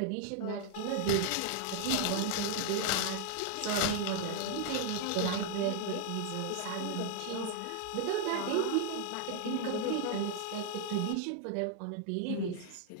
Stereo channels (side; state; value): both; different; correlation 0.00